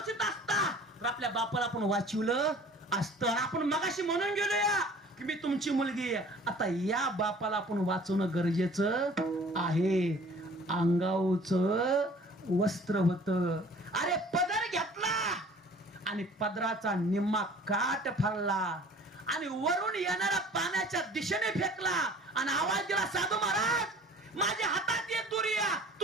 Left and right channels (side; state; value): both; normal; correlation 0.49